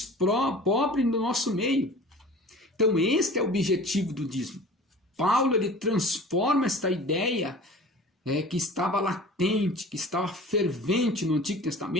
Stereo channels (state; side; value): normal; both; correlation 0.42